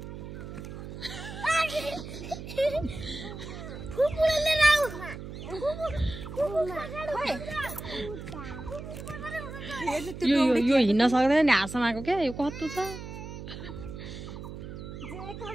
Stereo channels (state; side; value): noise; right; hum, 10 dB below the sound